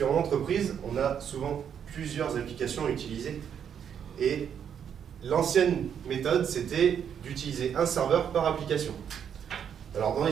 entreprise, on a souvent plusieurs applications à utiliser. Et l'ancienne méthode, c'était d'utiliser un serveur par application. Alors dans les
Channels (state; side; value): quieter; left; 8.3 dB